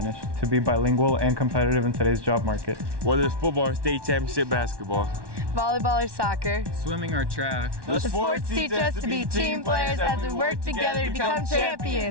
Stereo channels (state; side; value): late; left; 1.1 ms